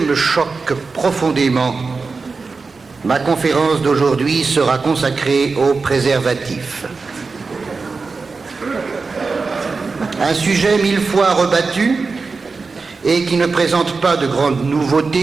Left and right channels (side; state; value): left; quieter; 4.4 dB